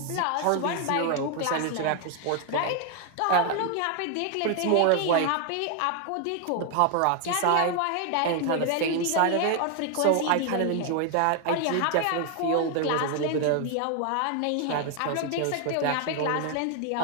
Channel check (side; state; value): both; different; correlation 0.00